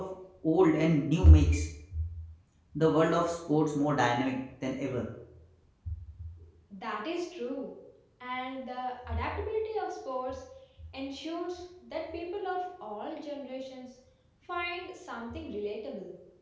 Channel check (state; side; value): identical; both; correlation 1.00